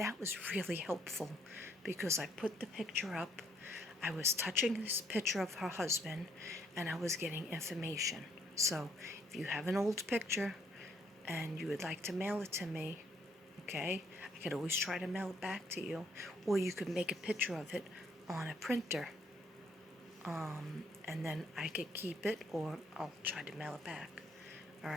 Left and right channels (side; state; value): both; normal; correlation 0.67